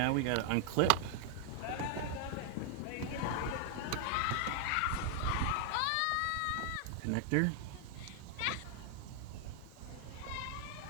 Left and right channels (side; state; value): both; different; correlation 0.00